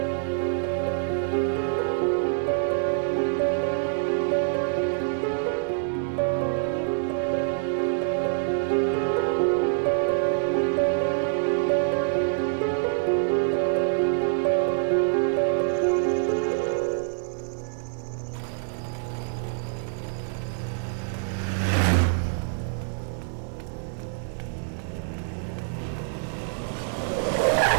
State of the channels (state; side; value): silent; left; digital silence